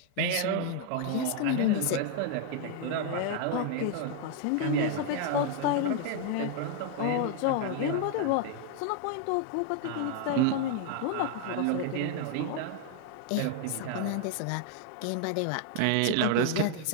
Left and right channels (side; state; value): both; different; correlation 0.00